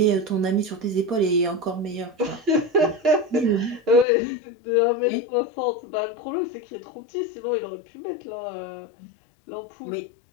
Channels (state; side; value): drops out; right; at 4.0 s